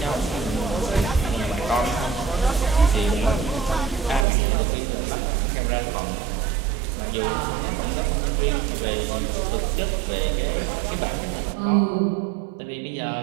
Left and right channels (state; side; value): drops out; left; at 4.2 s